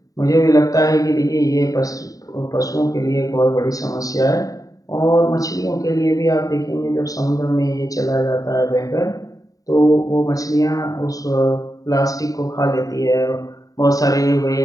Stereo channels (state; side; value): late; right; 0.17 ms